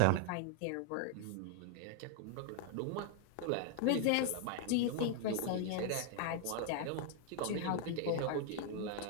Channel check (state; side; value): different; both; correlation 0.00